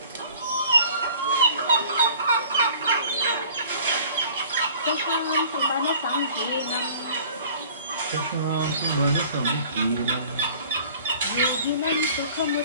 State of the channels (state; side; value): inverted; both; correlation -0.49